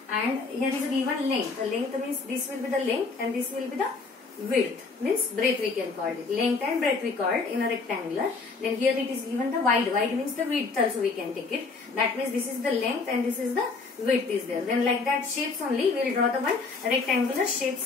And here is a given length. The length means this will be the length and this will be the width. Means breadth we can call it. Length and breadth we called in a rectangular. Then here it is given the wide. Wide means the width also we can take it. That means this is the length and this is the width is there. Then like that shapes only we will draw the one rectangular shapes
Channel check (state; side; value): quieter; right; 4.2 dB